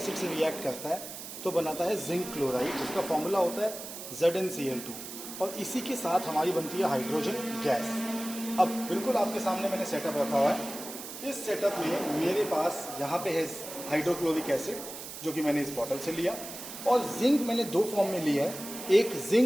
से रिएक्ट करता है तो बनाता है जिंक क्लोराइड, जिसका फॉर्मूला होता है ZnCl2, और इसी के साथ हमारी बनती है हाइड्रोजन गैस। अब बिल्कुल आपके सामने मैंने सेटअप रखा हुआ है। इस सेटअप में मेरे पास यहाँ पे है हाइड्रोक्लोरिक एसिड जो कि मैंने इस बॉटल से लिया, और जिंक मैंने दो फॉर्म में लिया है, एक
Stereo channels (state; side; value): noise; right; hiss, 10 dB below the sound